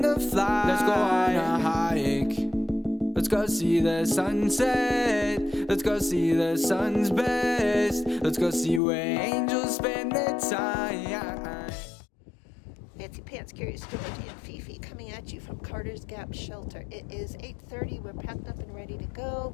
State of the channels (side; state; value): right; drops out; at 8.8 s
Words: to fly. Let's go on a hike. Let's go see the sunset. Let's go see the sun's best. Let's go see where angels spend their time. Fancy Pants, Curious George and FiFi coming at you from Carter's Gap Shelter. It is 8:30. We're packed up and ready to